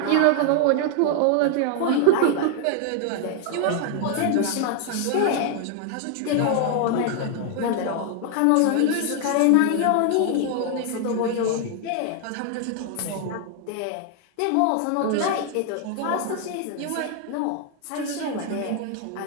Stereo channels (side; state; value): both; different; correlation 0.00